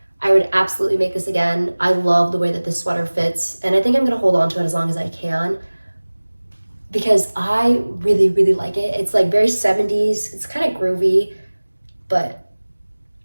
I would absolutely make this again. I love the way that this sweater fits, and I think I'm gonna hold on to it as long as I can because I really, really like it. It's like very 70s, it's kind of groovy, but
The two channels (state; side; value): inverted; both; correlation -1.00